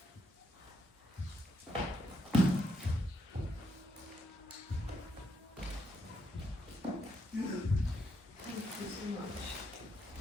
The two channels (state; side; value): normal; both; correlation 0.77